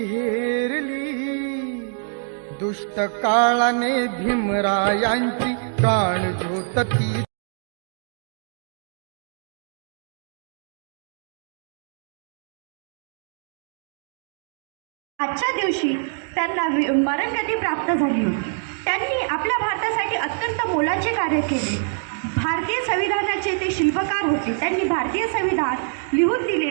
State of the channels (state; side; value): silent; left; 62 dB below the other